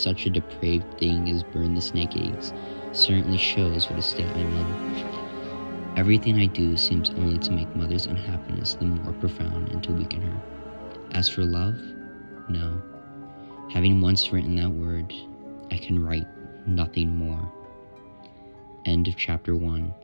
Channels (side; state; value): both; inverted; correlation -1.00